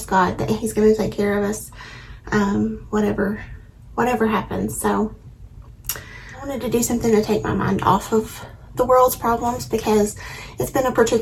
God that He's going to take care of us, whatever happens. So I wanted to do something to take my mind off of the world's problems, because it's been a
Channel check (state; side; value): identical; both; correlation 1.00